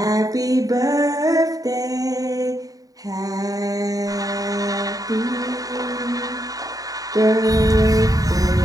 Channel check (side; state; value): left; late; 0.18 ms